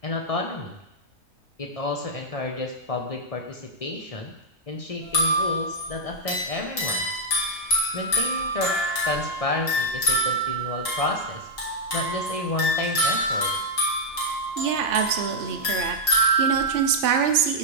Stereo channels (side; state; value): both; normal; correlation -0.05